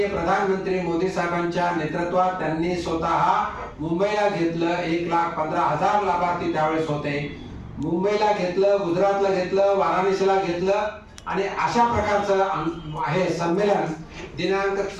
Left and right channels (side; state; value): both; identical; correlation 1.00